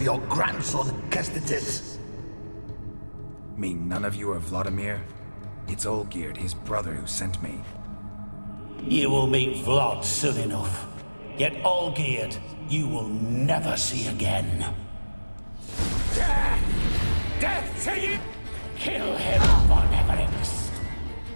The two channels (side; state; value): both; inverted; correlation -1.00